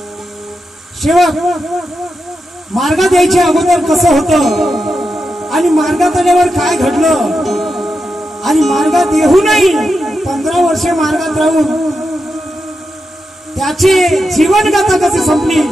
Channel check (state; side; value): normal; both; correlation 0.87